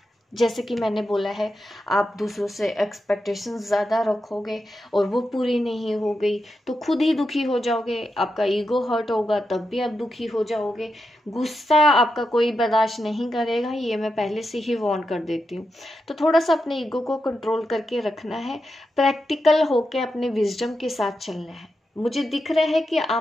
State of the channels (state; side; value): normal; both; correlation 0.87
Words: जैसे कि मैंने बोला है, आप दूसरों से एक्सपेक्टेशंस ज़्यादा रखोगे और वो पूरी नहीं हो गई तो खुद ही दुखी हो जाओगे, आपका ईगो हर्ट होगा, तब भी आप दुखी हो जाओगे। गुस्सा आपका कोई बर्दाश्त नहीं करेगा, ये मैं पहले से ही वार्न कर देती हूँ। तो थोड़ा सा अपने ईगो को कंट्रोल करके रखना है, प्रैक्टिकल होके अपने विजडम के साथ चलना है। मुझे दिख रहा है कि